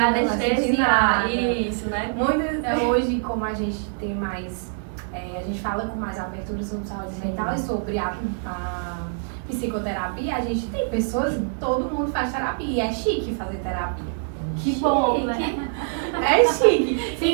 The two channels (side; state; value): left; silent; digital silence